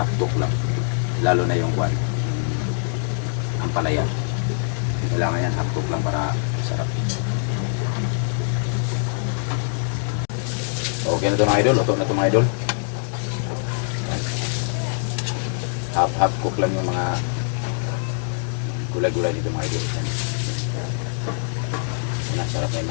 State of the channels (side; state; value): right; silent; digital silence